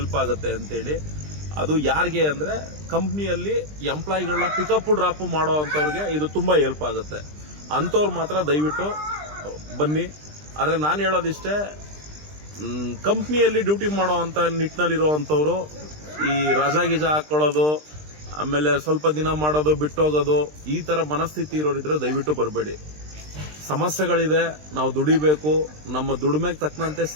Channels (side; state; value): left; late; 20 ms